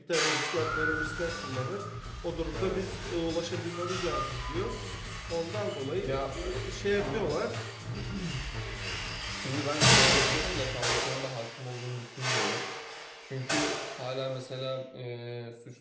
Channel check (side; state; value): both; identical; correlation 1.00